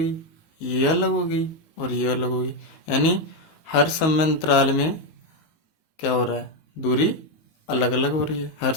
ये अलग हो गई और ये अलग हो गई। यानी हर समय अंतराल में क्या हो रहा है? दूरी अलग अलग हो रही है हर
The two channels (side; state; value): right; late; 19 ms